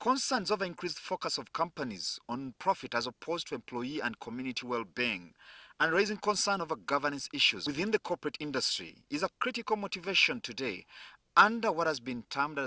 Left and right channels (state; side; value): identical; both; correlation 1.00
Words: over increased focus of companies on profit as opposed to employee and community well-being, and raising concern over governance issues within the corporate industry is a critical motivation today under what has been termed